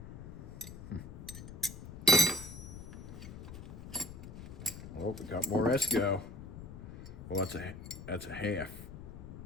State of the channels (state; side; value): noise; left; rumble, 11 dB below the sound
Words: Oh, we got more Esco. Well, that's a half.